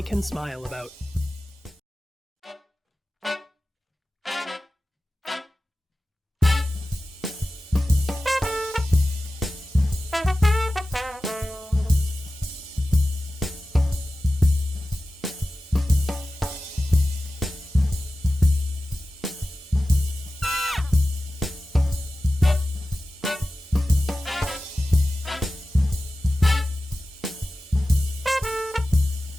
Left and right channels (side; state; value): both; normal; correlation 0.95